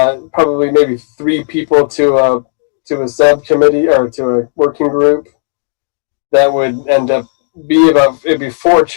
maybe 3 people to a subcommittee or to a working group. That would end up it'd be 4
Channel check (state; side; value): silent; right; digital silence